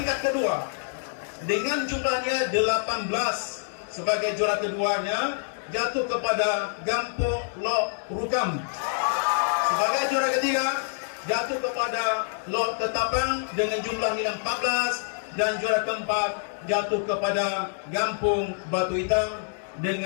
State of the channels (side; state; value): right; silent; digital silence